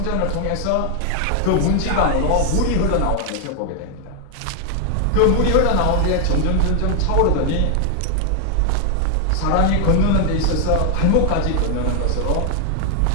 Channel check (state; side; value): different; both; correlation 0.00